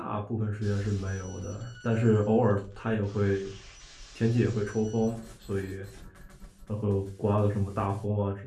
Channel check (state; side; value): identical; both; correlation 1.00